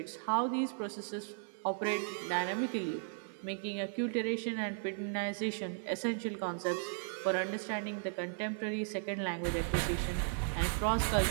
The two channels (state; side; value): silent; left; digital silence